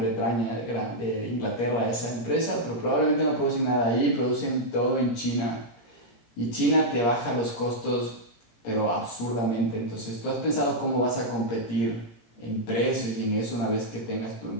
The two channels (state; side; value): late; right; 17 ms